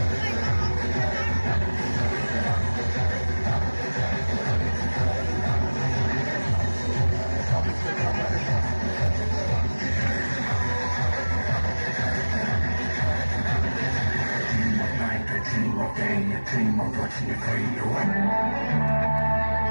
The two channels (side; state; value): both; inverted; correlation -1.00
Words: team of pain, a team of watching you fade away.